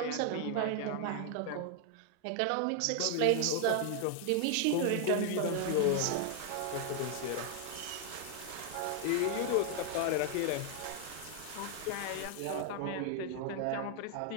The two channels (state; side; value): different; both; correlation 0.00